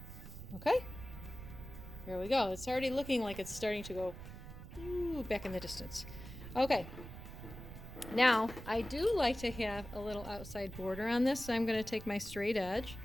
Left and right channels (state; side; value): noise; right; rumble, 12 dB below the sound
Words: Okay. Here we go. It's already looking like it's starting to go back in the distance. Okay. Now, I do like to have a little outside border on this, so I'm going to take my straight edge